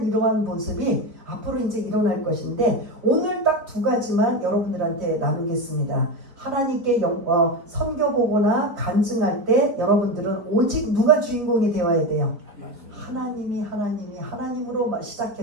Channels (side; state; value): left; late; 4.5 ms